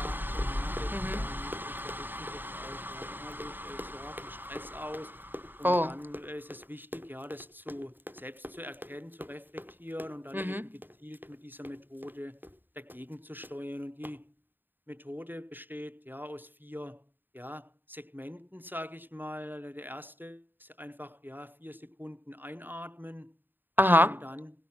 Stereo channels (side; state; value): left; late; 0.093 ms